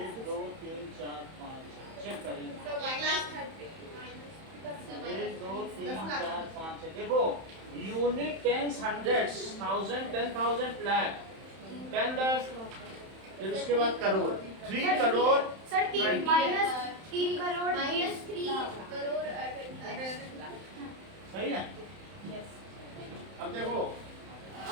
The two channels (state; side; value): late; left; 31 ms